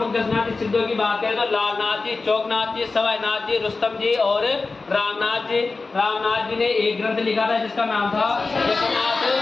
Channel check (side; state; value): right; quieter; 3.8 dB